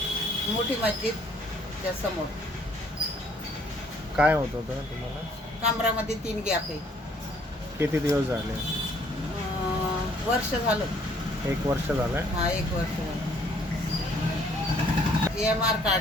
मोठी मस्जिदच्या समोर. काय होत होतं तुम्हाला? कमरामध्ये 3 गॅप आहे. किती दिवस झाले? वर्ष झालं. 1 वर्ष झालंय. हा, 1 वर्ष झालं. EMR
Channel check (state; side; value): normal; both; correlation 0.62